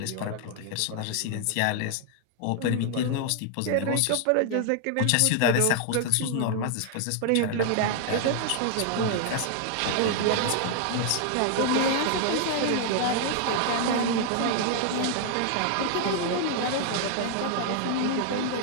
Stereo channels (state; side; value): different; both; correlation 0.00